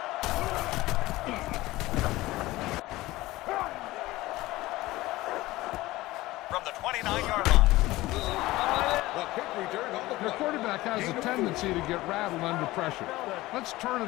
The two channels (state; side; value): quieter; right; 18.4 dB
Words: From the 29-yard line. The quarterback has a tendency to get rattled under pressure. Let's turn